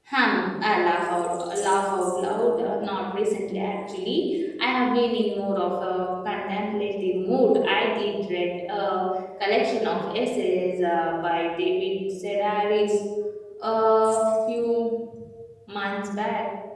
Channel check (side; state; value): both; identical; correlation 1.00